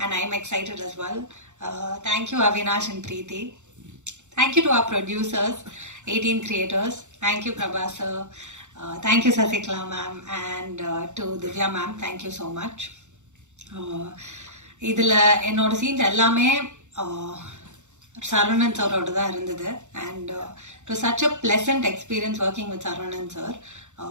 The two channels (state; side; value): late; left; 0.84 ms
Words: and I'm excited as well. Thank you Avinash and Preeti. Thank you to our producers, 18 creators. Thank you Prabha sir. Thank you Sasikla ma'am and to Divya ma'am. Thank you so much. இதில் என்னோட scenes எல்லாமே சரவணன் சாரோட தான் இருந்தது and it was such a pleasant experience working with Saravanan sir.